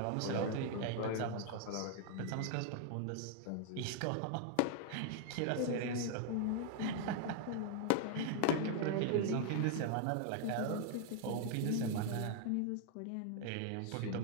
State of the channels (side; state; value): both; different; correlation 0.00